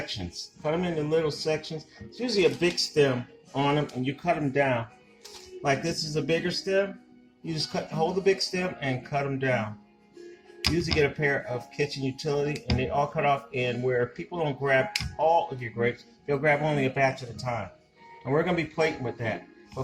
Cut them into little sections. It's usually a big stem on them, and you cut them down. Like this is a bigger stem. You just hold the big stem and cut them down. Usually get a pair of kitchen utility, and they all cut off. And where people don't grab all of your grapes, they'll grab only a batch at a time. And we're going to be plating with that.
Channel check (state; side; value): identical; both; correlation 1.00